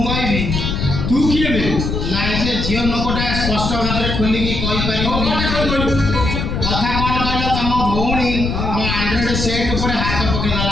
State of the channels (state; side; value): noise; left; rumble, 2 dB below the sound